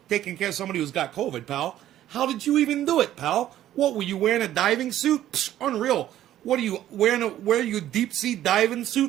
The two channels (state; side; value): quieter; left; 12.5 dB